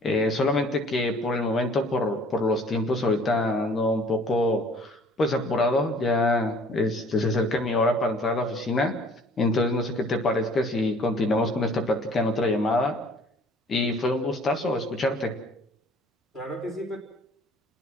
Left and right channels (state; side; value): normal; both; correlation 0.53